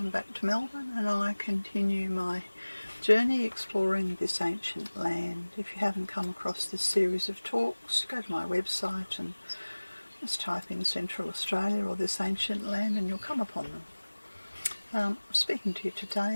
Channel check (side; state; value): both; inverted; correlation -1.00